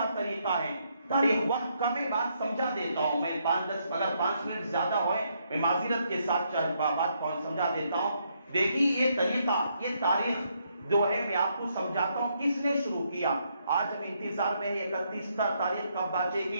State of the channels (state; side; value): inverted; both; correlation -0.75